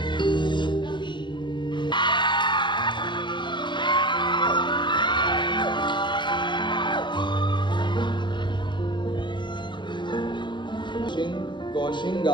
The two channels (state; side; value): late; right; 0.22 ms